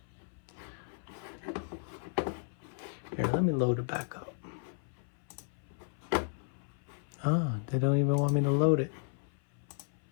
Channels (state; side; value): silent; right; 55 dB below the other